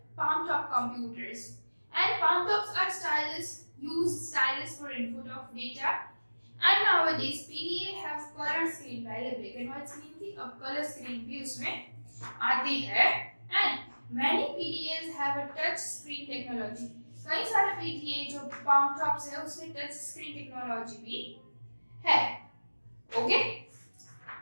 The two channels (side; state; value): both; inverted; correlation -1.00